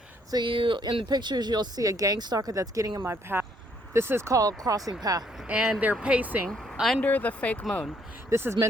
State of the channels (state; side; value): normal; both; correlation 0.68